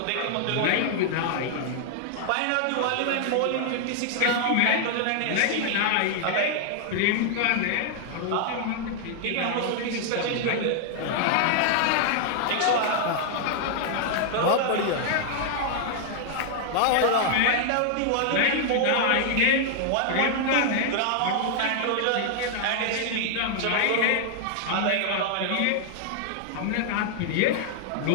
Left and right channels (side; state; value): both; different; correlation -0.01